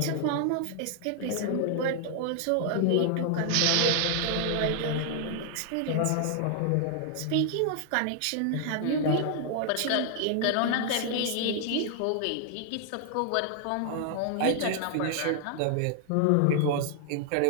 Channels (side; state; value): both; different; correlation 0.00